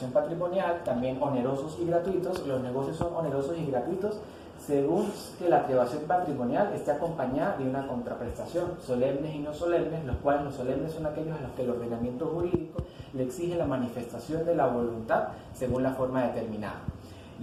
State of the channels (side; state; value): both; identical; correlation 1.00